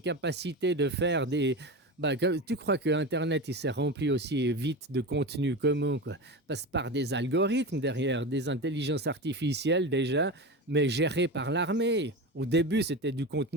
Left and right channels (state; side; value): normal; both; correlation 0.24